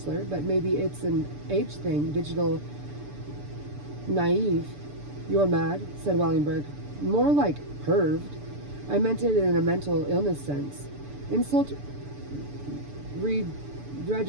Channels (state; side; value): late; left; 6.9 ms